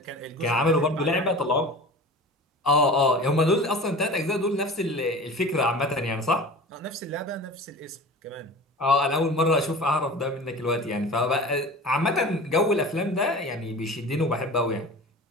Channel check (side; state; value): both; normal; correlation 0.37